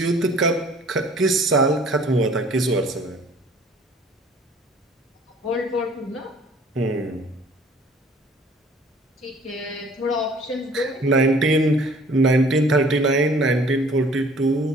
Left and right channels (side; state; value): both; normal; correlation 0.53